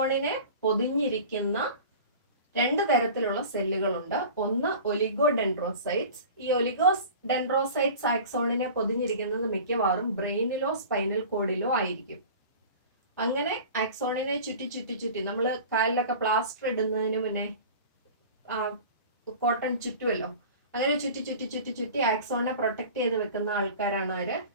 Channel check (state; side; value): inverted; both; correlation -0.38